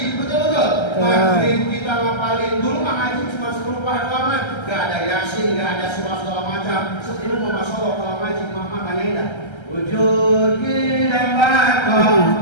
betul-betul. Maghrib kita ngapalin dulu, ngaji cuma 10 halaman, gak ada yasin, gak ada surah segala macam. Sebelum masya Allah kalau ngaji, mama tanya indah. Wujud kita bakal,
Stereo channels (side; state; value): right; late; 1.3 ms